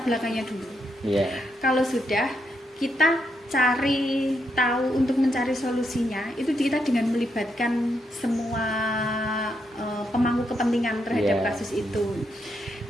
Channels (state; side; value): normal; both; correlation 0.79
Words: belakangnya dulu. Kalau sudah kita cari tahu untuk mencari solusinya, itu kita dengan melibatkan semua pemangku kepentingan terhadap kasus itu.